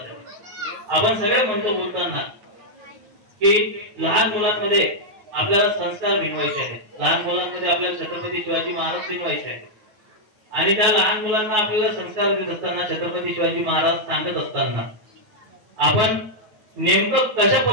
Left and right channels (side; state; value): left; late; 9.4 ms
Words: आपण सगळे म्हणतो बोलताना की लहान मुलांमध्ये आपल्याला संस्कार भिनवायचे आहेत, लहान मुलांमध्ये आपल्याला छत्रपती शिवाजी महाराज भिनवायचे आहेत आणि त्या लहान मुलांना आपल्याला संस्कार देत असताना छत्रपती शिवाजी महाराज सांगत असताना आपण नेमकं कशा